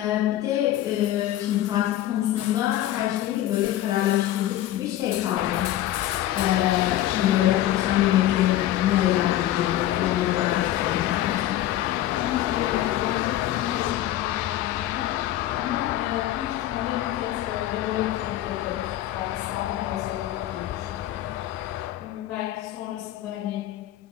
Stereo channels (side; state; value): right; quieter; 13.5 dB